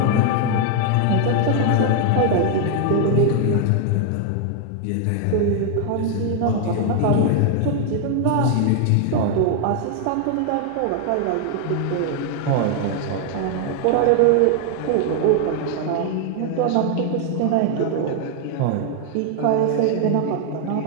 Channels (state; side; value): different; both; correlation 0.00